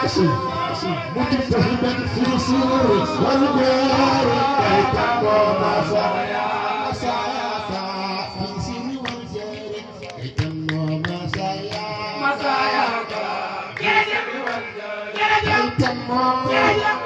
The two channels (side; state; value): both; identical; correlation 1.00